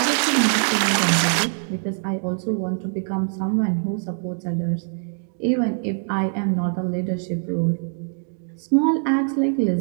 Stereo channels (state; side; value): silent; left; 63 dB below the other